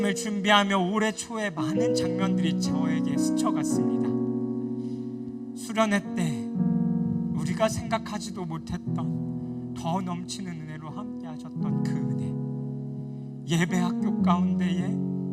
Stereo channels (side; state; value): both; identical; correlation 1.00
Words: 준비하며 올해 초에 많은 장면들이 저에게 스쳐갔습니다. 수련회 때 우리가 생각하지도 못했던 더 넘치는 은혜로 함께 하셨던 그 은혜, 예배학교 가운데에